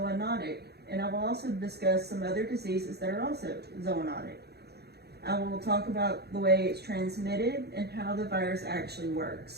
and I will also discuss some other diseases that are also zoonotic. I will talk about the way it's transmitted and how the virus actually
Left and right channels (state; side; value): late; left; 0.47 ms